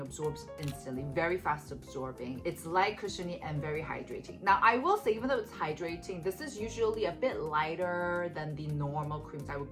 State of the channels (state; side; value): identical; both; correlation 1.00